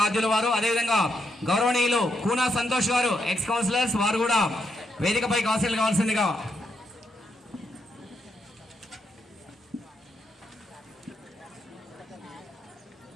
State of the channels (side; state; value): both; normal; correlation 0.79